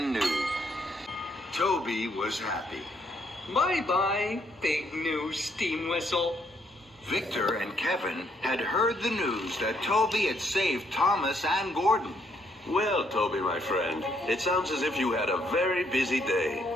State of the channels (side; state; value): both; normal; correlation 0.72